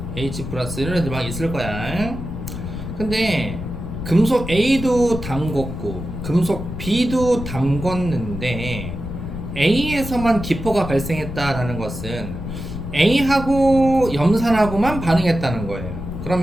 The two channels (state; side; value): noise; left; rumble, 7 dB below the sound